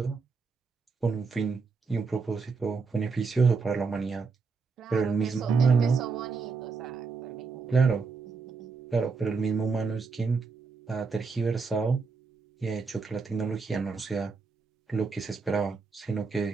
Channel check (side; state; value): left; quieter; 4.7 dB